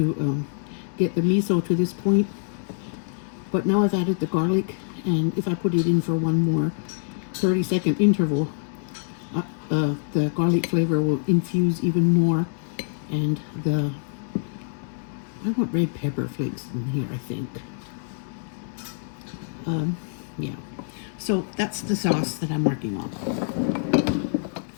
get the miso to this point. But now I've added the garlic, and if I put it in for one more 30-second interval, the garlic flavor will infuse even more, and I want red pepper flakes in here, I think. Yeah, so that's the sauce that I'm working on.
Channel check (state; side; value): silent; right; 62 dB below the other